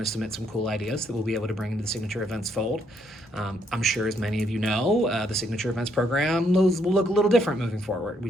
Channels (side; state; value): both; normal; correlation 0.72